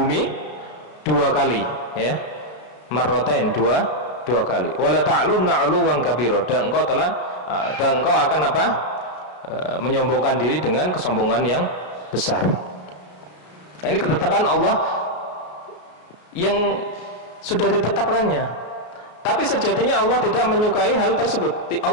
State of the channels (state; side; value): late; right; 33 ms